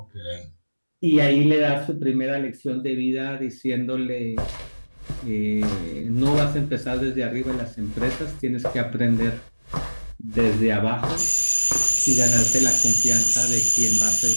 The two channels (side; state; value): both; inverted; correlation -1.00